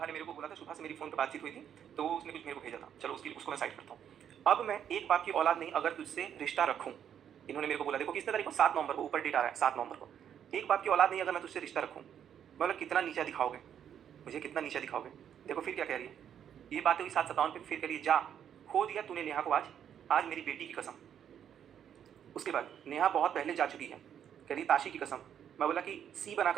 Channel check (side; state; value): left; quieter; 9.1 dB